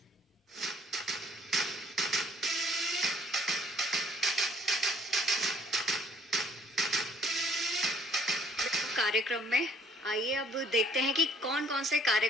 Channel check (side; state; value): both; normal; correlation 0.59